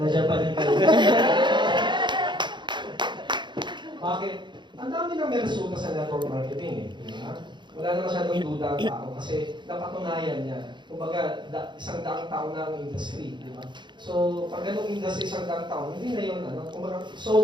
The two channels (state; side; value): late; left; 0.22 ms